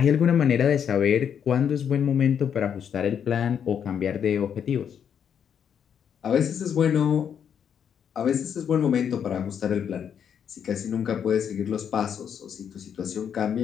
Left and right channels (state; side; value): quieter; right; 8.1 dB